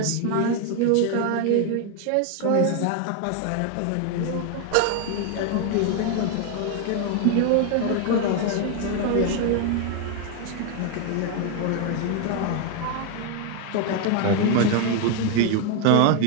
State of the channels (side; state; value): both; different; correlation 0.00